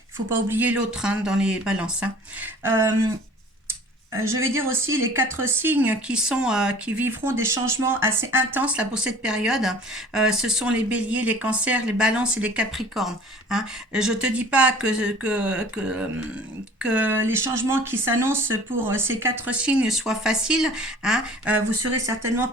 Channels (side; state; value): both; normal; correlation 0.47